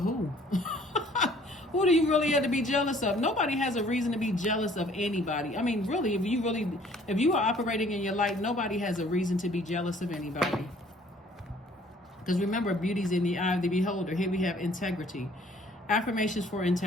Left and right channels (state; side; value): normal; both; correlation 0.57